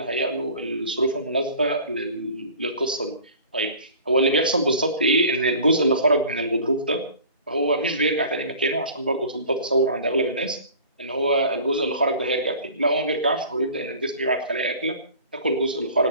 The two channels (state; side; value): inverted; both; correlation -0.44